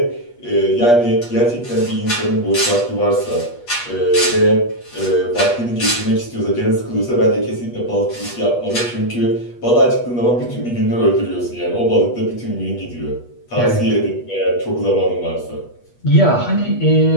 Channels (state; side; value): late; right; 8.3 ms